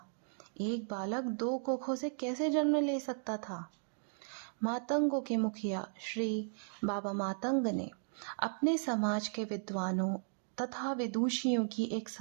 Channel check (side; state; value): left; silent; digital silence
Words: एक बालक दो कोखों से कैसे जन्म ले सकता था? मातंगों के मुखिया श्री बाबा मातंग ने अपने समाज के विद्वानों तथा विदुषियों की एक